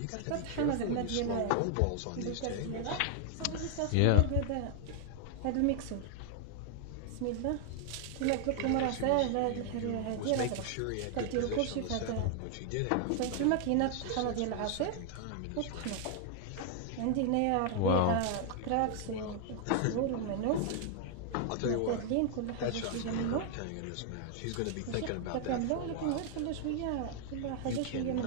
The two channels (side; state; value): both; different; correlation 0.00